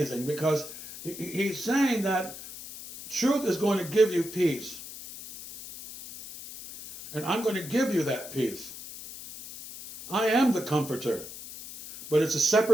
because he's saying that truth is going to give you peace. And I'm going to give you that peace. I am the comforter, but it's a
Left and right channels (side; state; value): left; noise; hiss, 13 dB below the sound